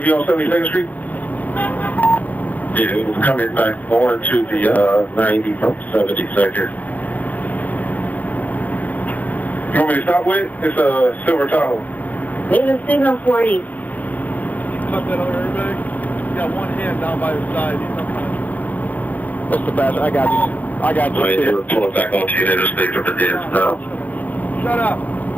on 72nd Street? Yeah, it was coming back going to the 90 from 72nd. You want me to stop with? It's a silver Tahoe. There's a signal 40. Cut that other airbag. You got one hand down by the side. What's the best? I got you. I got you. Right, they were pulling back onto you. They just stayed from the dance now. Shut up.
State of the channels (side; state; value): right; late; 0.080 ms